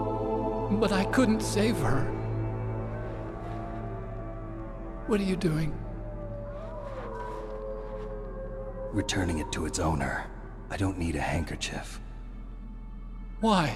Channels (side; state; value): both; identical; correlation 1.00